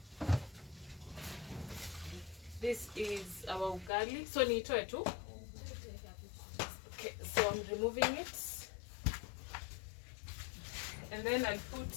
this is our ugali. So nitoe tu. Okay, so I'm removing it. And then I'll put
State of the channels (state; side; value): drops out; right; at 3.9 s